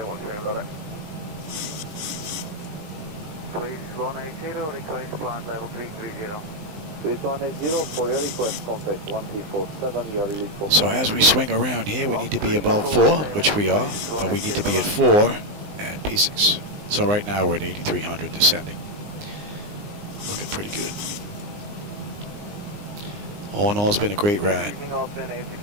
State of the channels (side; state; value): left; late; 19 ms